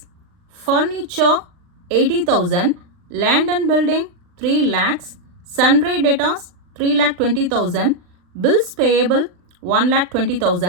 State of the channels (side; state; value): left; late; 39 ms